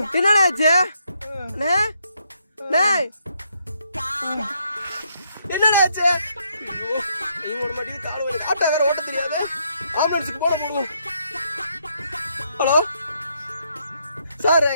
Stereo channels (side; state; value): both; inverted; correlation -0.74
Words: என்னடா ஆச்சு? டேய் என்னடா ஆச்சு? ஐயோ ஓட மாட்டேங்குது, கால் வலி. ஆட்டோ வேற ஓட்ட தெரியாது. ஆம்புலன்ஸுக்கு போடுவோம். ஹலோ சார்,